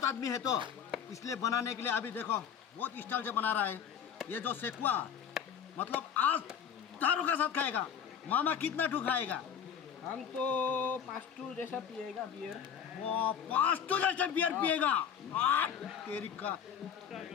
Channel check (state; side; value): quieter; right; 8.1 dB